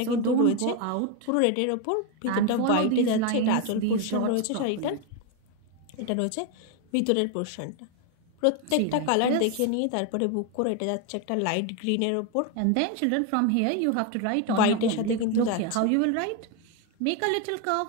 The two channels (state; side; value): different; both; correlation 0.02